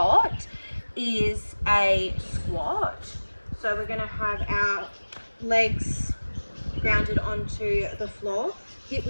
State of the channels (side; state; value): both; inverted; correlation -1.00